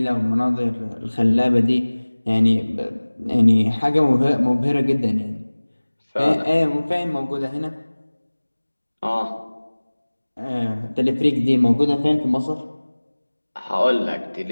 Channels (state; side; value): inverted; both; correlation -1.00